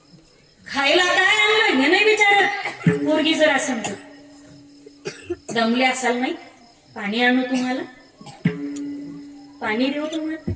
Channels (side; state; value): both; identical; correlation 1.00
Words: खायला काय आणलं हे नाही विचारत, पोरगी जर सांगतो, दमले असाल नाही, पाणी आणू तुम्हाला, पाणी देऊ तुम्हाला,